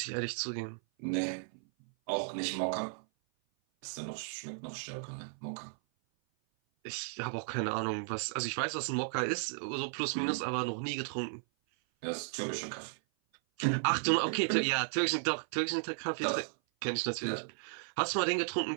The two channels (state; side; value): silent; left; 55 dB below the other